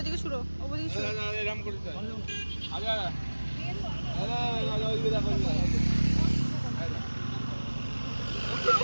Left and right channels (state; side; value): inverted; both; correlation -1.00